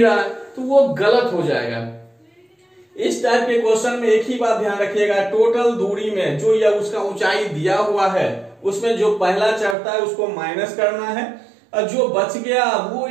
रहा है, तो वो गलत हो जाएगा। इस टाइप के क्वेश्चन में एक ही बात ध्यान रखिएगा, टोटल दूरी में जो या उसका ऊंचाई दिया हुआ है उसमें जो पहला चढ़ता है उसको माइनस करना है और जो बच गया वो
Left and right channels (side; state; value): left; drops out; at 9.8 s